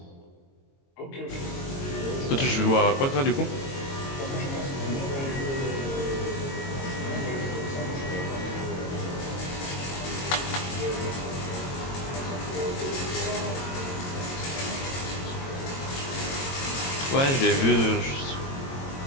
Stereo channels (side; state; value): right; late; 22 ms